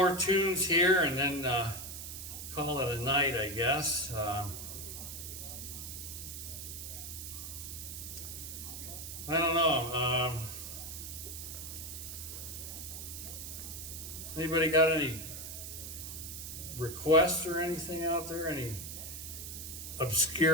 tunes here, and then call it a night, I guess. I don't know. Anybody got any requests or anything out there? Any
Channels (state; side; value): noise; right; hiss, 8 dB below the sound